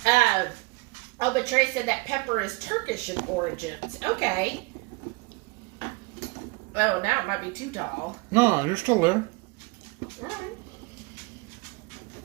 But Trey said that pepper is Turkish in origins. Okay. Oh, now it might be too tall. No, you're still there. Right.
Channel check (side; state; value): left; quieter; 26.7 dB